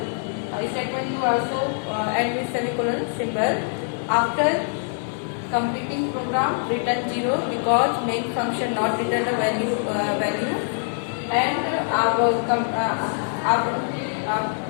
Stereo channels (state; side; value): silent; right; digital silence